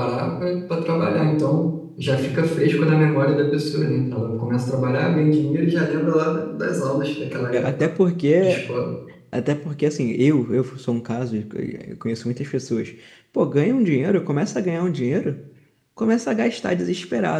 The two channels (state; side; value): identical; both; correlation 1.00